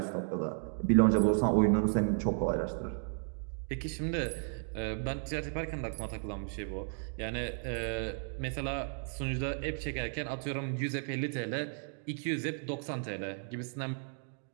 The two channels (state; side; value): silent; left; 55 dB below the other